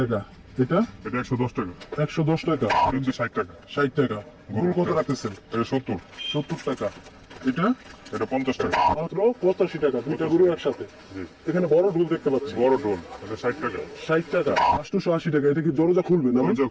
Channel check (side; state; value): both; identical; correlation 1.00